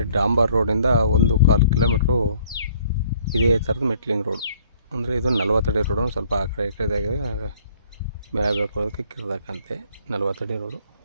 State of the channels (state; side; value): inverted; both; correlation -0.60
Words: ಡಾಂಬರ್ ರೋಡಿಂದ 1.25 ಕಿಲೋಮೀಟ್ರು ಇದೇ ಥರದ ಮೆಟ್ಲಿಂಗ್ ರೋಡು. ಅಂದರೆ ಇದು 40 ಅಡಿ ರೋಡು, ಸ್ವಲ್ಪ ಆ ಕಡೆ ಈ ಕಡೆ ಮೇಲೆ ಬೆಳ್ಕೊಳ್ಳೋದಕ್ಕೆ ಕಿರ್ದಾಕಂತೆ 40 ಅಡಿ ರೋಡು.